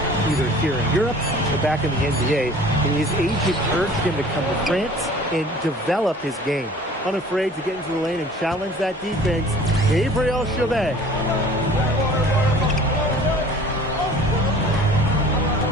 either here in Europe or back in the NBA. And his agent urged him to come to France and develop his game. Unafraid to get into the lane and challenge that defense. Gabriel Chauvet.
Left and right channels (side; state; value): both; normal; correlation 0.48